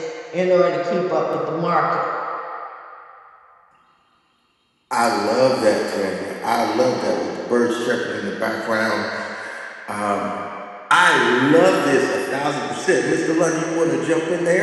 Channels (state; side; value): identical; both; correlation 1.00